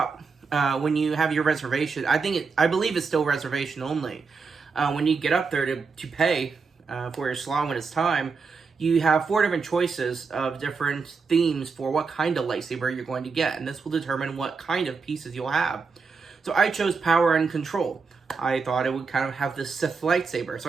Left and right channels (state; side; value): quieter; left; 4.9 dB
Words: when you have your reservation, I believe it's still reservation only. When you get up there to pay for your slot when it's time, you have 4 different choices of different themes for what kind of lightsaber you're going to get, and this will determine what kind of pieces you'll have. So I chose Power and Control. I thought it would kind of have this Sith lightsaber,